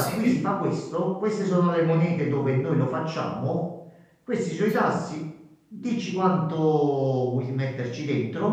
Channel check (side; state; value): both; identical; correlation 1.00